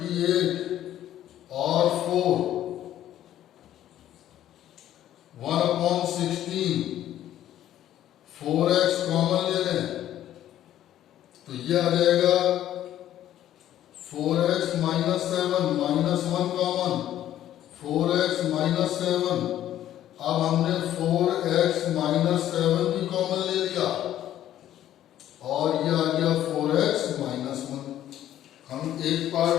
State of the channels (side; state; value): right; quieter; 12.1 dB